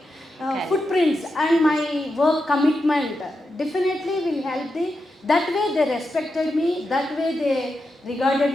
footprints and my work commitment definitely will help the. That way they respected me, that way they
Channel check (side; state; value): both; normal; correlation 0.87